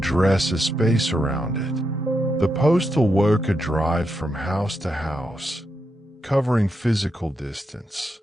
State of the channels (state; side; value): normal; both; correlation 0.84